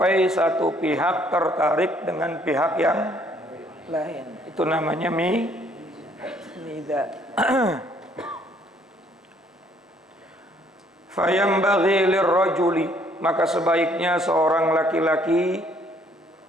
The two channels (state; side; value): normal; both; correlation 0.63